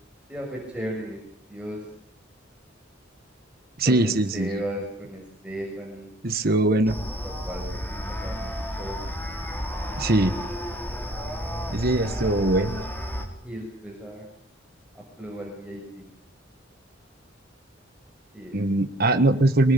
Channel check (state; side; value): normal; both; correlation 0.55